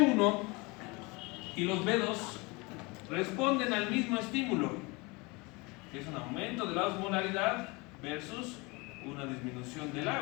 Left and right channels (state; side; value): quieter; right; 26.4 dB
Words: y los B2 responden al mismo estímulo, que es un aumento de la osmolaridad versus una disminución del